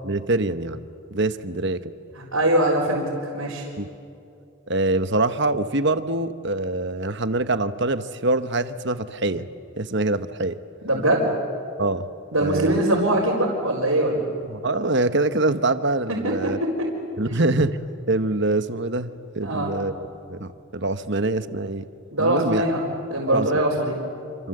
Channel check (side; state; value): both; normal; correlation -0.07